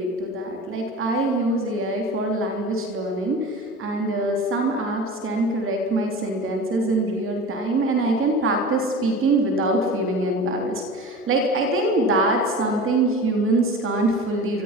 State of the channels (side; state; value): both; normal; correlation 0.35